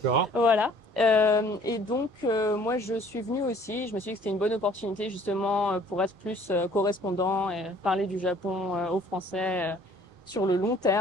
Voilà. Moi, je suis venue aussi. Je me suis dit que c'était une bonne opportunité justement pour être plus correspondant et parler du Japon aux Français sur le long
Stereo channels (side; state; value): both; normal; correlation 0.56